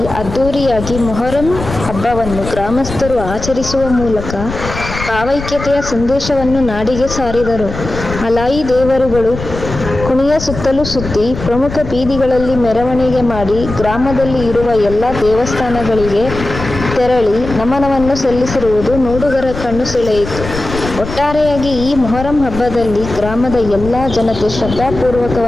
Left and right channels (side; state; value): left; noise; rumble, 9 dB below the sound